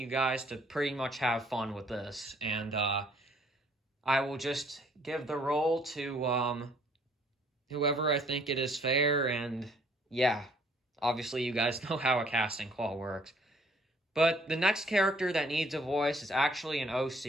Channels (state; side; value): normal; both; correlation 0.61